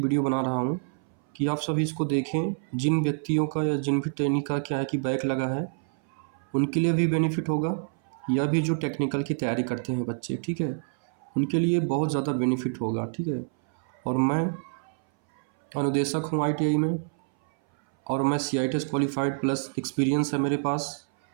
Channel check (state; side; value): silent; left; 59 dB below the other